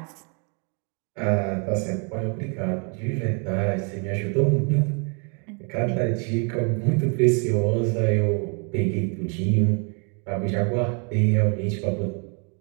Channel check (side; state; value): left; quieter; 37.0 dB